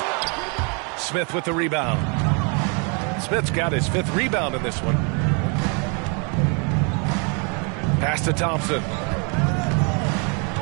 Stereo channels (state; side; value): quieter; left; 35.5 dB